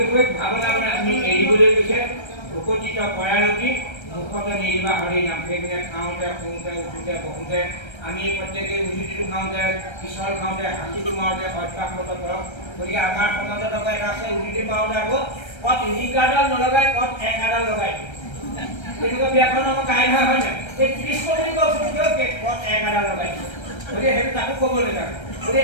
ভাৱনাবোৰ আমি এৰিবলৈ গৈছে ভকতিত পৰায়ণতি মুখতে নিৰিবা হৰি নাম সেইখিনি খাওঁতে শুওঁতে উঠোঁতে বহোঁতে আমি প্ৰত্যেকেই উজুতিটো খাওঁতে পিছল খাওঁতে হাঁচিটো মাৰোঁতে অভ্যাসগত কৰক গতিকে আমাৰ সমাজত আকৌ এটা আছে উজুতি মাৰোঁতে আকৌ কত ৰিকাৰ্ডাল নলগাই কত একাডাল লগাই তেনেকুৱা ব্যাকৰণ আমাৰ কাইভা হয় নাই এই কৃষ্ণ বুলি কৈছোঁ কত একাডাল লগাই গতিকে সেইটো তাকো ক'বলৈ লাগে গতিকে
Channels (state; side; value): late; right; 1.3 ms